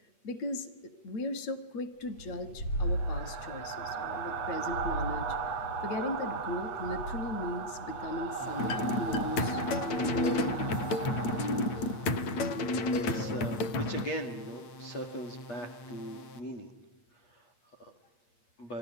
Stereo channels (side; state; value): right; late; 8.5 ms